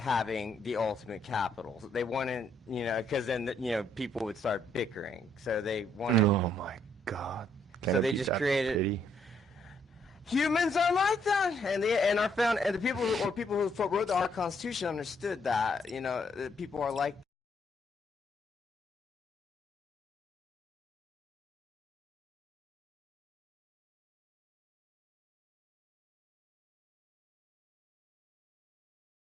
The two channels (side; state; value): both; normal; correlation 0.71